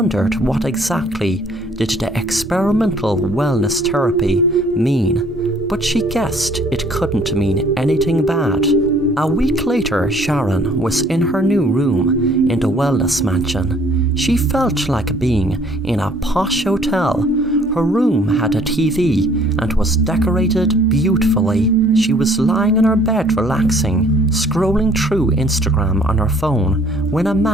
what exactly did the experimental wellness therapy mean, but she guessed it couldn't mean anything bad. A week later, Sharon was in her new room in the wellness mansion. She felt like being in a posh hotel. Her room had a TV and was decorated beautifully. She was lying in her bed relaxing, scrolling through Instagram on her phone when a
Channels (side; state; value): both; normal; correlation 0.58